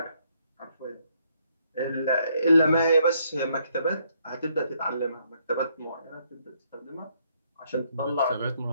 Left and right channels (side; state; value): both; inverted; correlation -0.71